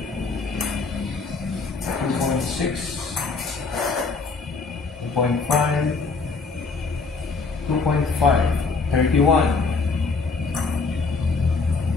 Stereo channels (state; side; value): quieter; right; 4.3 dB